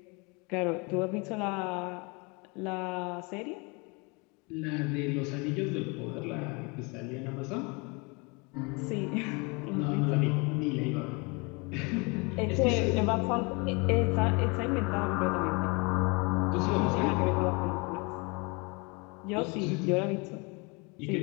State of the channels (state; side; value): quieter; right; 29.2 dB